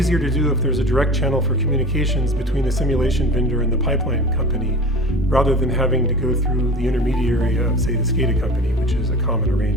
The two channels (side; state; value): both; normal; correlation 0.36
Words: to do if there's a direct channel for communications between the simulation vendor and the pipeline company, rather than having to go through the intermediary of, say, the SCADA company, which is a common